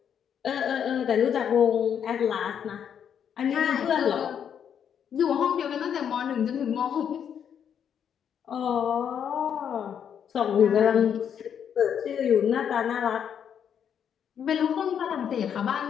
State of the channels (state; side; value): quieter; right; 8.4 dB